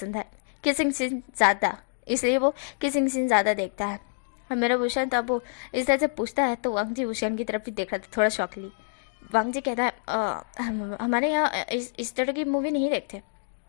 है, किसिंग सीन ज़्यादा, इसलिए वो किसिंग सीन ज़्यादा देखता है। और मेरा भूषण तब वो इस तरह से पूछता है तो वांगजी भूषण की तरफ भी देख रहा था थोड़ा शौकली। वांगजी कहता है हमारे यहाँ इस तरह की मूवी नहीं देखते,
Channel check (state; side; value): silent; right; digital silence